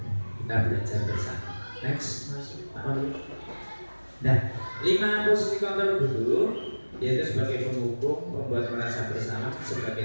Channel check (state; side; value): inverted; both; correlation -1.00